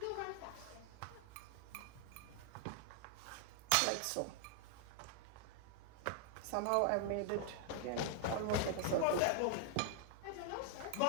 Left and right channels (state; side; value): different; both; correlation -0.01